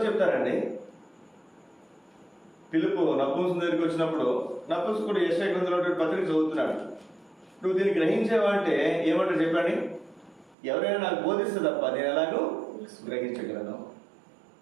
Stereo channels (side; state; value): left; drops out; at 10.6 s